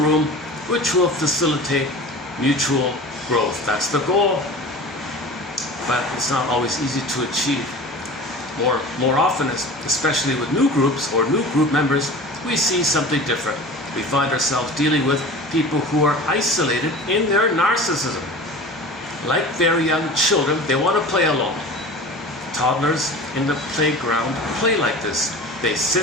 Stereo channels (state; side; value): normal; both; correlation 0.37